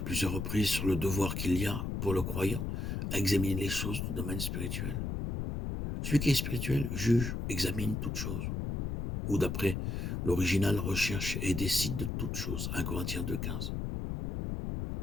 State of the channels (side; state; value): left; noise; rumble, 3 dB below the sound